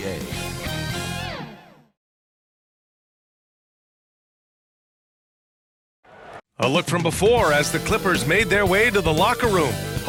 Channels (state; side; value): identical; both; correlation 1.00